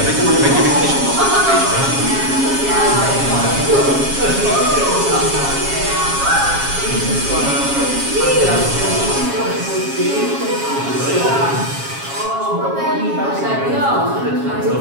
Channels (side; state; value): left; late; 7.3 ms